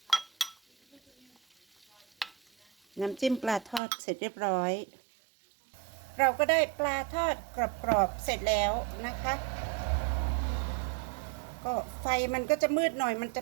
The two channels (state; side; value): drops out; left; at 3.8 s